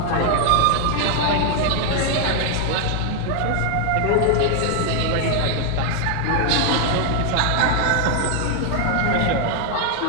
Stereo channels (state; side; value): different; both; correlation 0.00